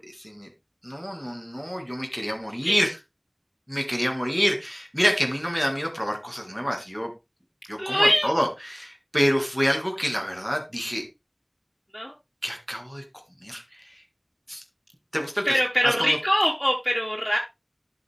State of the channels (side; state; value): both; identical; correlation 1.00